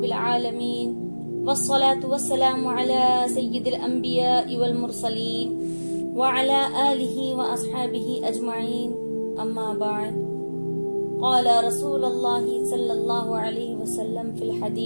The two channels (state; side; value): inverted; both; correlation -1.00